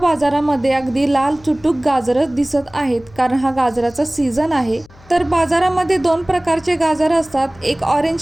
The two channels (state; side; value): noise; left; hum, 25 dB below the sound